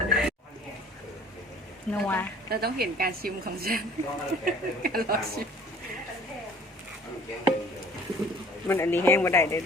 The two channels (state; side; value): normal; both; correlation 0.51